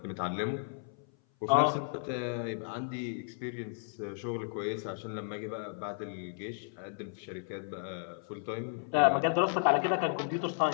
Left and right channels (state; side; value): silent; right; 55 dB below the other